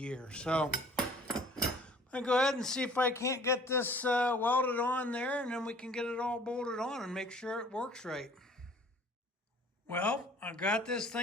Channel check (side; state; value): both; normal; correlation 0.52